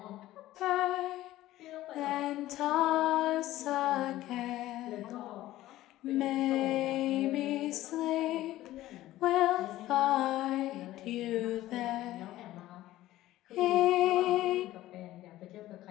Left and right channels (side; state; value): right; quieter; 15.4 dB